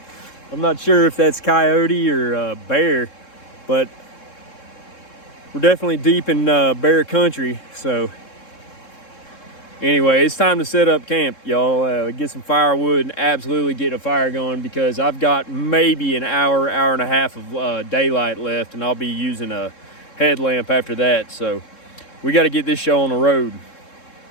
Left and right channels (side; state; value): right; late; 3.7 ms